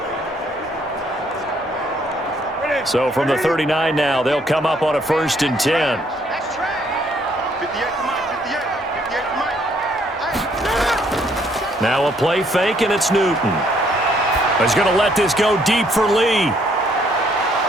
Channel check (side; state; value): both; normal; correlation 0.67